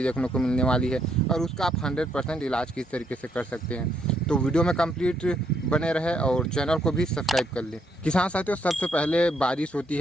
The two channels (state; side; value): normal; both; correlation 0.73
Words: देखने को मिलने वाली है और उसका आप 100% इलाज किस तरीके से कर सकते हैं। तो वीडियो में कंप्लीट बने रहे और चैनल को भी सब्सक्राइब कर लें। किसान साथियों, सबसे पहले बारिश होती